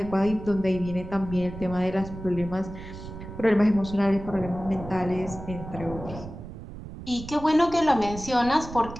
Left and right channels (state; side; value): noise; right; rumble, 12 dB below the sound